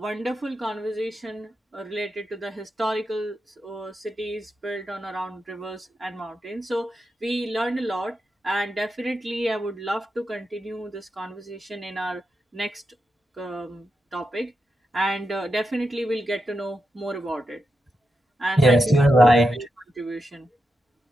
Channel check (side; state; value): both; normal; correlation 0.87